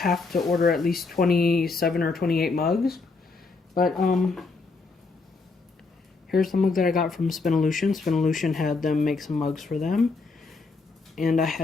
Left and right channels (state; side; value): quieter; right; 4.1 dB